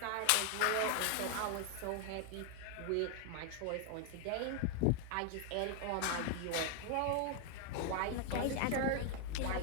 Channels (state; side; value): different; both; correlation 0.00